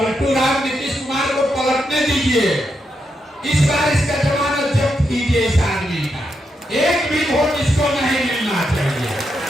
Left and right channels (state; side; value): normal; both; correlation 0.83